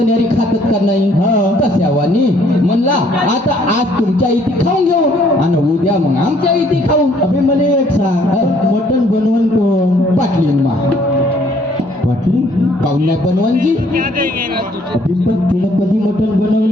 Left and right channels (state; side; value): normal; both; correlation 0.63